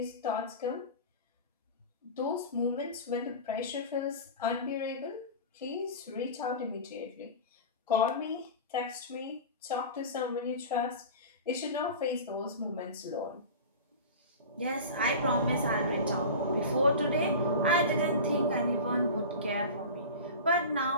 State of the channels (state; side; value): inverted; both; correlation -0.32